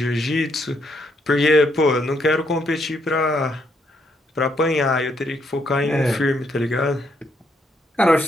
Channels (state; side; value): normal; both; correlation 0.74